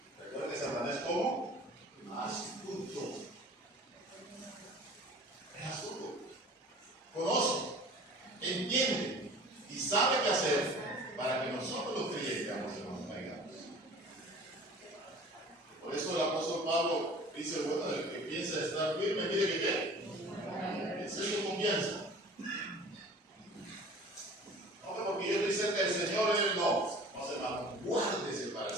Recuerda que Satanás es como astuto. Es astuto. Conoce, entiende y sabe qué hacer para que nosotros los creyentes nos caigamos. Por eso el apóstol Pablo dice, bueno, el que piensa estar firme, mire que qué. Esa es su confianza. No, porque yo estoy cerca del Señor, no se va, guárdese para el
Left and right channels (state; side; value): normal; both; correlation 0.44